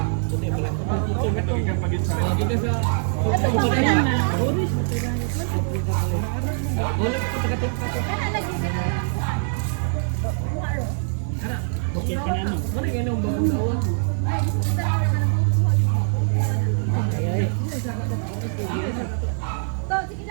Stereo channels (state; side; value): silent; left; digital silence